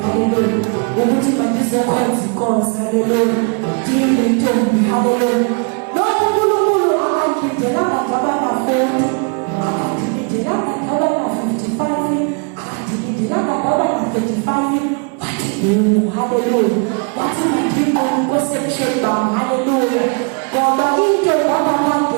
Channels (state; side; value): quieter; left; 37.7 dB